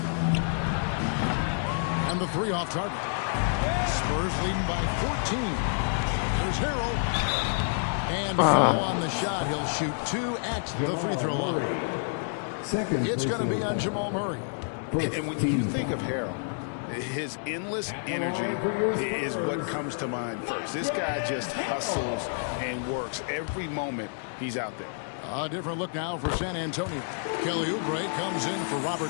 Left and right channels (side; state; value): right; silent; digital silence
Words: And the three off target. Spurs leading by 14. There's Harrell. And foul on the shot. He'll shoot 2 at the free throw line. It's going to be on Jamal Murray. And when you think of Harrell, his endless energy is what comes to mind first. This guy just hustles and works every moment he's out there. A different look now for San Antonio. Kelly Oubre comes in for